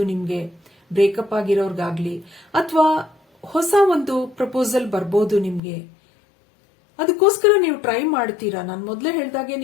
ನಿಮ್ಗೆ ಬ್ರೇಕಪ್ ಆಗಿರೋರ್ಗಾಗ್ಲಿ ಅಥವಾ ಹೊಸ ಒಂದು ಪ್ರಪೋಸಲ್ ಬರ್ಬೋದು ನಿಮ್ಗೆ. ಅದಕ್ಕೋಸ್ಕರ ನೀವು ಟ್ರೈ ಮಾಡ್ತೀರಾ. ನಾನು ಮೊದಲೇ ಹೇಳ್ದಾಗೆ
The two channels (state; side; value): drops out; right; at 5.6 s